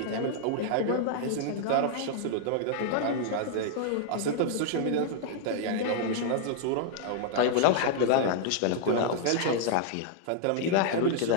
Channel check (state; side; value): different; both; correlation -0.01